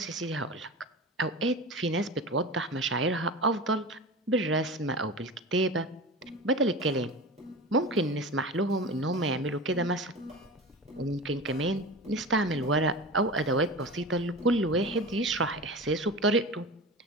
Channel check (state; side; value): normal; both; correlation 0.30